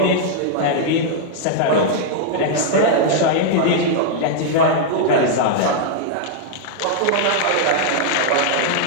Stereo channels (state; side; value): different; both; correlation -0.01